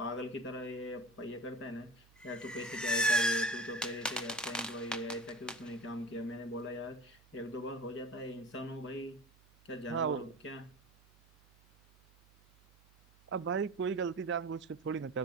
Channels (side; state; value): right; noise; hum, 27 dB below the sound